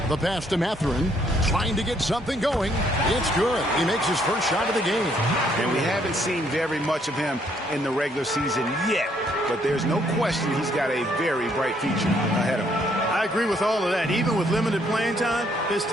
The pass to Mathurin. Trying to get something going. It's good. He makes his first shot of the game. And we haven't seen very much of him in the regular season yet. But there's no question he's got a very bright future ahead of him. I agree with all of that. Even with limited playing time, his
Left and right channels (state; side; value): normal; both; correlation 0.69